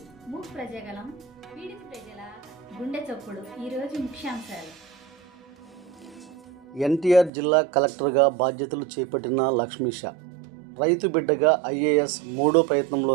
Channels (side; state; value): left; drops out; at 7.3 s